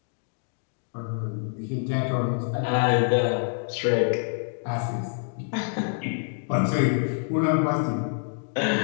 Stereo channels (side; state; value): right; silent; digital silence